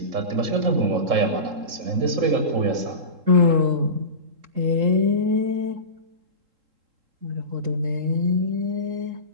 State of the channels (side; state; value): left; late; 3.7 ms